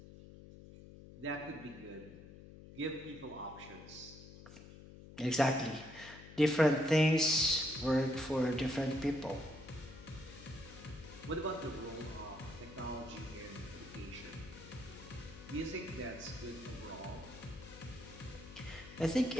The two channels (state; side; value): noise; left; hum, 16 dB below the sound